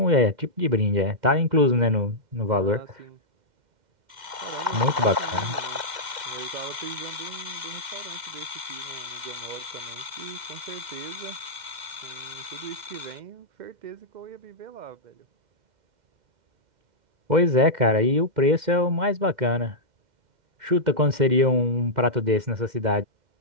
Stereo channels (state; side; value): late; left; 2.1 ms